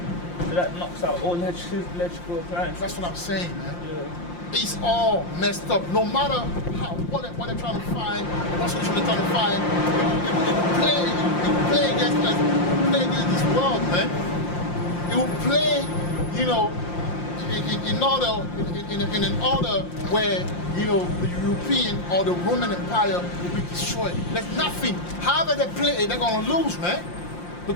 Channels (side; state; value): right; late; 5.7 ms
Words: So that knocks out all electrical appliances. That's what I'm saying, man. Yeah. It's all messed up. No matter what they're trying to find, what solution they're trying to find, it will play against us. It will play against this world, man. It will play, you know, in an order where, you know, the European or the Roman Empire will be destroyed. There's nothing. However they play, they're gonna lose, man.